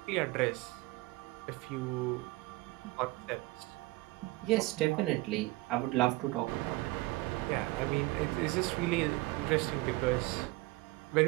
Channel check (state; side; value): quieter; left; 21.1 dB